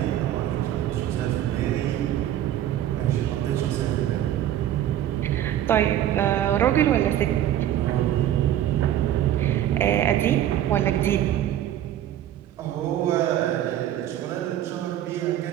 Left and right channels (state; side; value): quieter; left; 11.8 dB